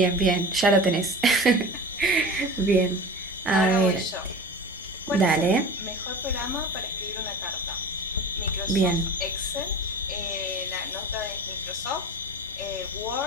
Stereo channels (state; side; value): normal; both; correlation 0.34